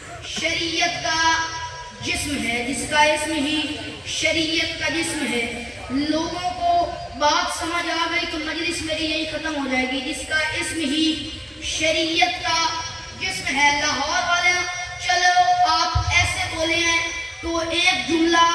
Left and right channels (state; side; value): identical; both; correlation 1.00